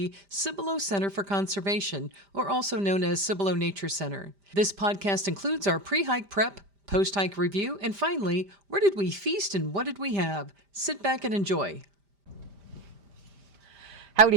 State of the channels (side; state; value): left; late; 5.0 ms